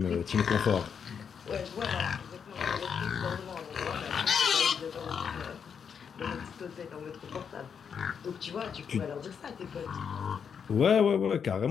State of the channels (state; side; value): quieter; right; 7.0 dB